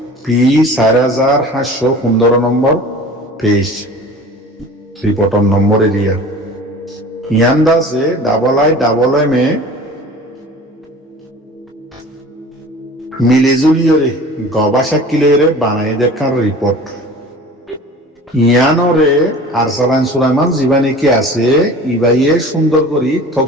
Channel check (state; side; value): normal; both; correlation 0.41